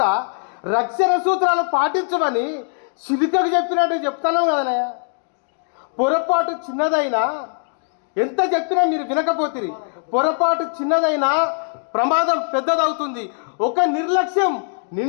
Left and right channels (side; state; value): right; silent; 65 dB below the other